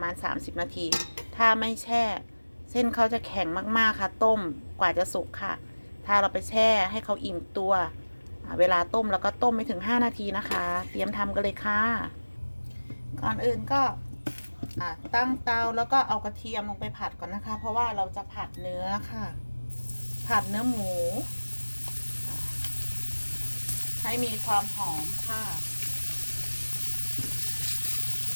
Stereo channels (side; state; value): both; inverted; correlation -1.00